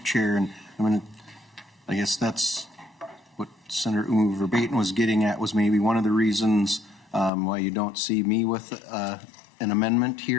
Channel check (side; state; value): right; drops out; at 7.3 s